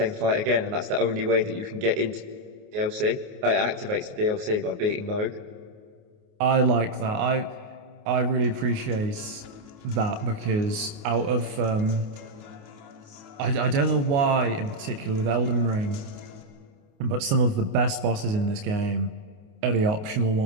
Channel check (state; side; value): late; left; 28 ms